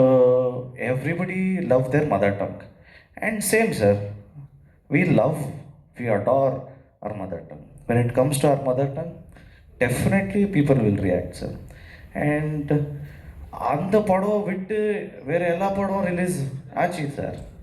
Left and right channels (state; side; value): identical; both; correlation 1.00